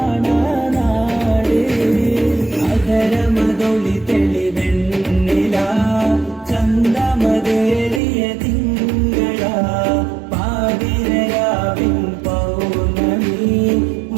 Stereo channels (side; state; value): left; drops out; at 8.0 s